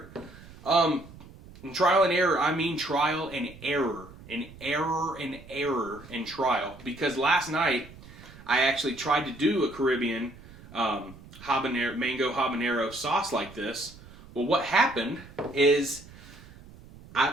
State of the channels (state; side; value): noise; right; rumble, 19 dB below the sound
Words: And trial and error, I mean trial and error. And error and trial. Because last night, I actually tried to do a Caribbean mango habanero sauce like this. Well, what happened is